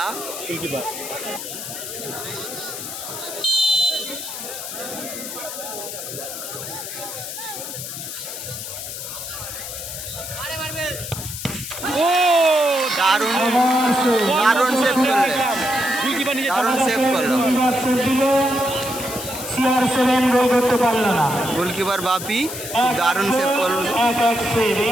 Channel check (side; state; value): left; noise; hiss, 8 dB below the sound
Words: গোলকিপার ও দারুণ দারুণ সেভ করলো। গোলকিপার নিজে দারুণ সেভ করলো CR7 গোল করতে পারল না। গোলকিপার বাপি দারুণ সেভ করলো।